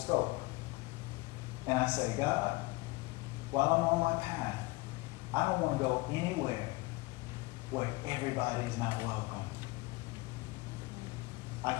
And I say, God, while I'm on my path, I don't want to go anywhere where everybody's not welcome. I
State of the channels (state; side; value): quieter; right; 22.8 dB